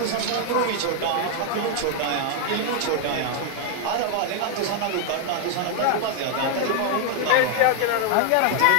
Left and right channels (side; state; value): both; different; correlation 0.00